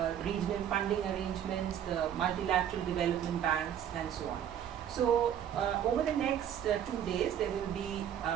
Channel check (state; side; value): quieter; left; 9.7 dB